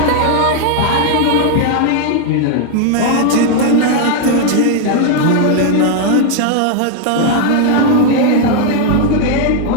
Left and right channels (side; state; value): both; different; correlation 0.00